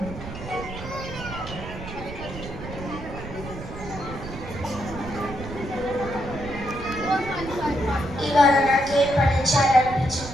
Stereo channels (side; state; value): right; noise; rumble, 11 dB below the sound